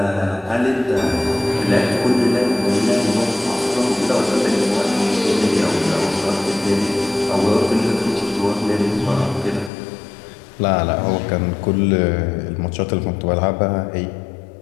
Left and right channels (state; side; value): drops out; right; at 9.7 s